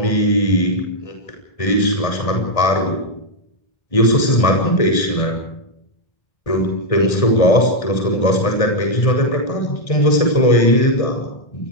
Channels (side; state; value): right; late; 1.6 ms